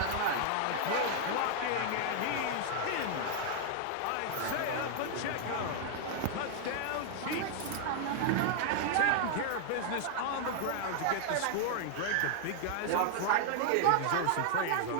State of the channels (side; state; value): both; different; correlation -0.01